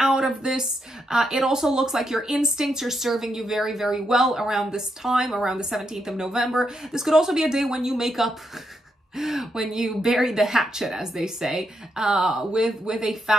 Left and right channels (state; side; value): normal; both; correlation 0.81